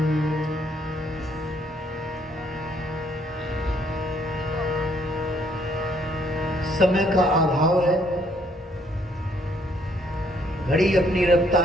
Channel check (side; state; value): both; normal; correlation 0.67